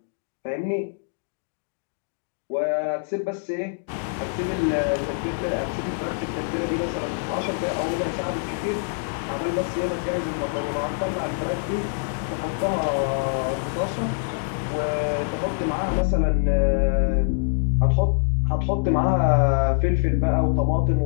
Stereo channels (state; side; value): silent; right; digital silence